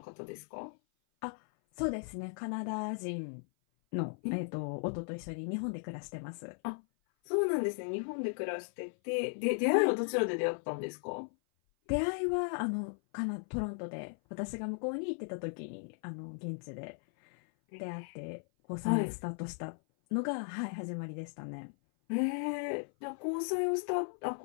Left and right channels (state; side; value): silent; right; 53 dB below the other